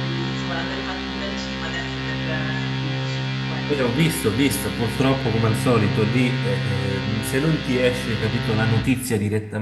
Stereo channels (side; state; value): both; identical; correlation 1.00